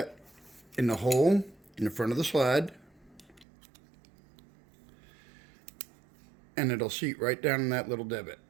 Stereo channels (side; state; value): left; drops out; at 3.5 s